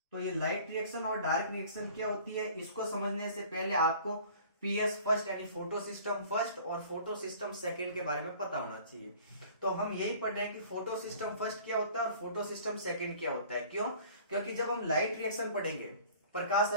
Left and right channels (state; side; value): inverted; both; correlation -0.48